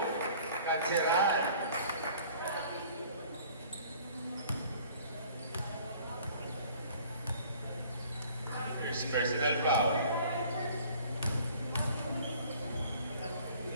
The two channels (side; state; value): both; inverted; correlation -0.52